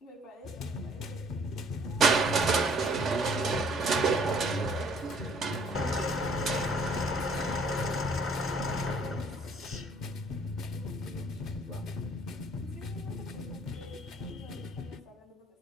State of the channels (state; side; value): normal; both; correlation 0.59